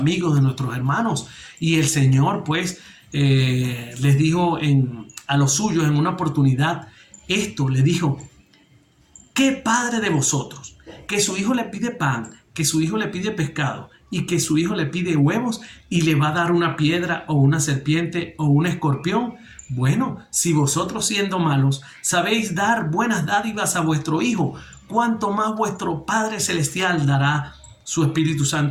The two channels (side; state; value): both; identical; correlation 1.00